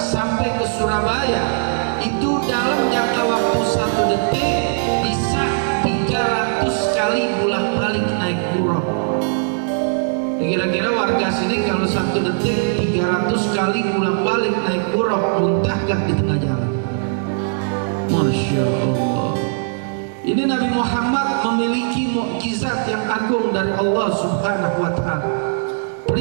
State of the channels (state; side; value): silent; left; digital silence